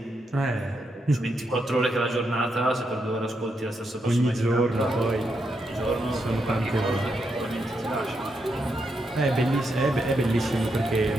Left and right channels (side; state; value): both; normal; correlation 0.82